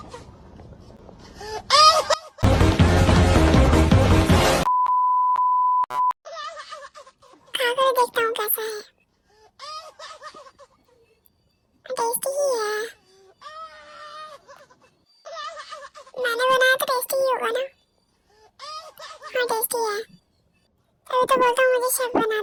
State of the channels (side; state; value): both; identical; correlation 1.00